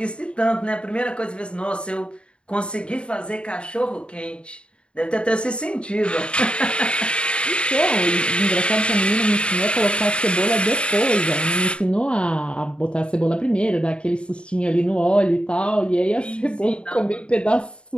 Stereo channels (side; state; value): right; late; 0.055 ms